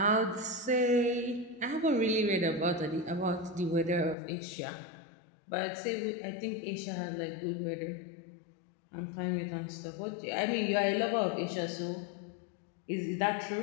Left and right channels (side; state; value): right; drops out; at 4.2 s